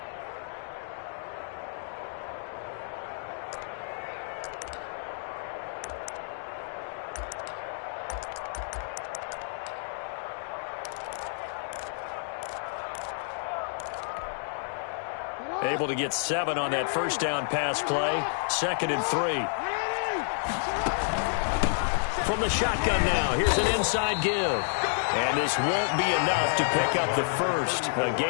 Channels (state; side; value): silent; right; digital silence